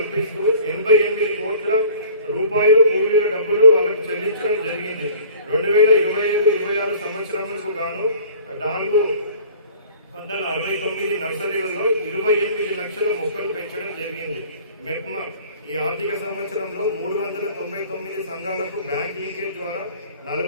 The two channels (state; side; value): inverted; both; correlation -0.48